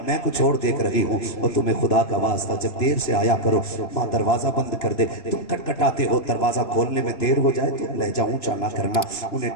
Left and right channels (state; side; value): late; right; 2.9 ms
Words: میں کچھ اور دیکھ رہی ہوں۔ اور تمہیں خدا کا واسطہ جب دیر سے آیا کرو، ماں دروازہ بند کر دے، تم کٹکھٹاتے ہو، دروازہ کھولنے میں دیر ہو جائے تو لہجہ اونچا نہ کرنا، انہیں